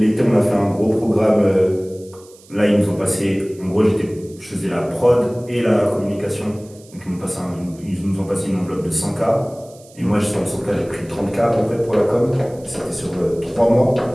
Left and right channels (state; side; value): noise; right; hiss, 25 dB below the sound